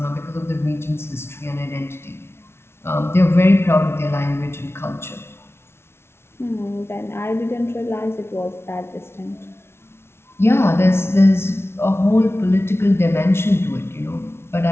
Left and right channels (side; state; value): right; late; 0.12 ms